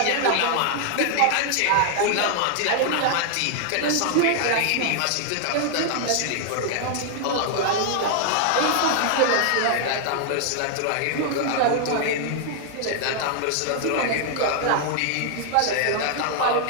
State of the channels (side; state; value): both; different; correlation 0.00